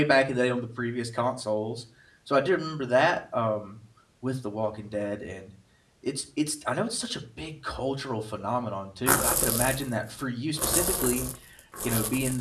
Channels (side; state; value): both; identical; correlation 1.00